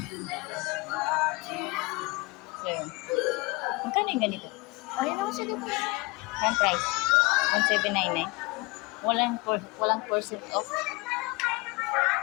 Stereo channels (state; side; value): quieter; right; 25.6 dB